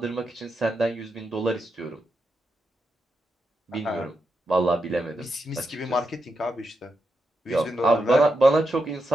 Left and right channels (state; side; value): normal; both; correlation 0.85